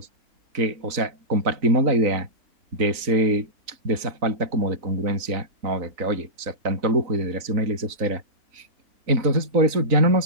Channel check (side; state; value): left; late; 3.9 ms